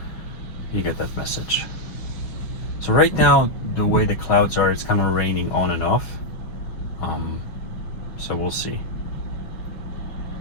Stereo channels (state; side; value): late; right; 6.1 ms